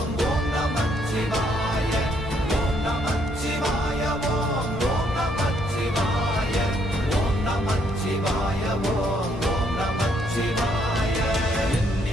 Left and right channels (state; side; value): normal; both; correlation 0.70